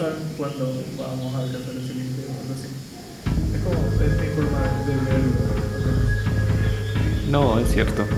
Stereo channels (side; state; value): both; identical; correlation 1.00